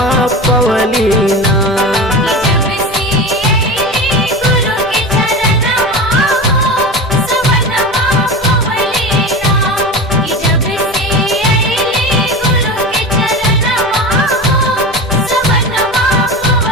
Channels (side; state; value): both; normal; correlation 0.28